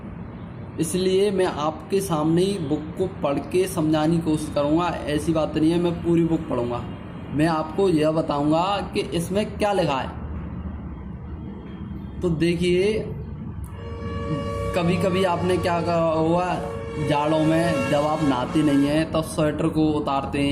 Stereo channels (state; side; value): identical; both; correlation 1.00